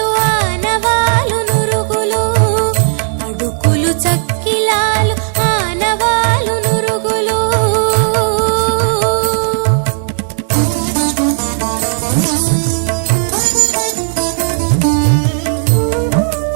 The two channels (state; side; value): silent; left; digital silence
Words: ఆనవాలు నురుగులు అడుకులు చక్కిలాలు ఆనవాలు నురుగులు